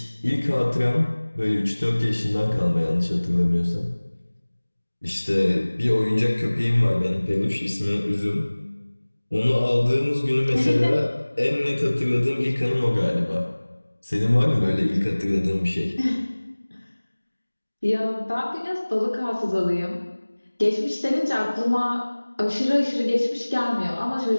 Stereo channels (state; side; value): inverted; both; correlation -1.00